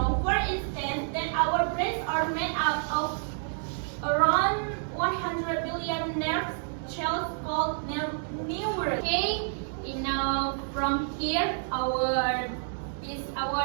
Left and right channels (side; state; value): left; silent; digital silence